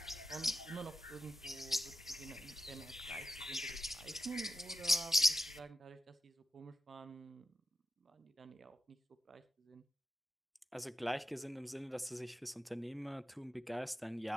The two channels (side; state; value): both; normal; correlation 0.90